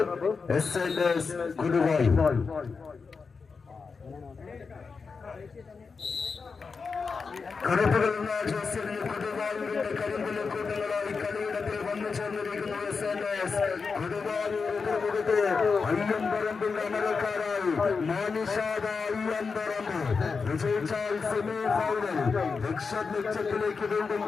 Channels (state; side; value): quieter; right; 5.0 dB